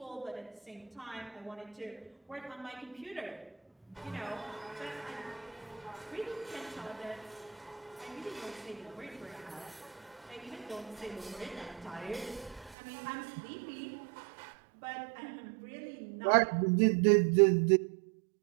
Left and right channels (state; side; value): drops out; left; at 12.8 s